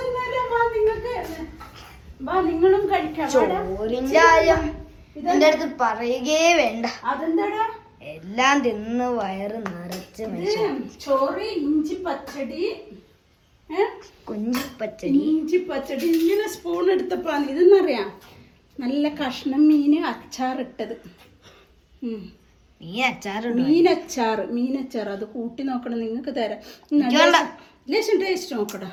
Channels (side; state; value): both; identical; correlation 1.00